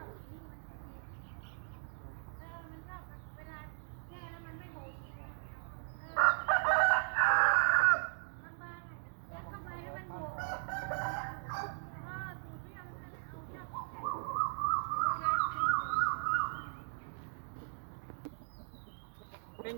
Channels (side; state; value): left; silent; digital silence